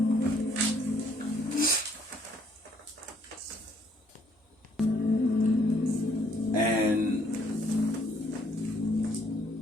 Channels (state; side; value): normal; both; correlation 0.66